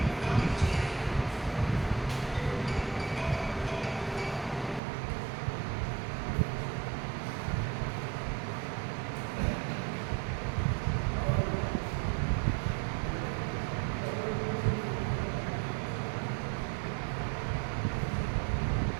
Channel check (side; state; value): left; drops out; at 4.8 s